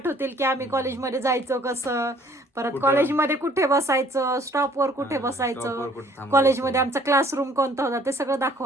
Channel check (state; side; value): normal; both; correlation 0.57